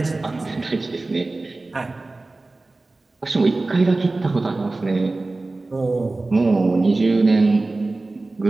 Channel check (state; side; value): quieter; left; 3.2 dB